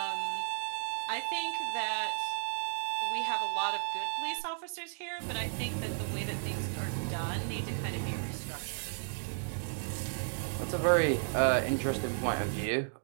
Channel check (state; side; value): silent; left; digital silence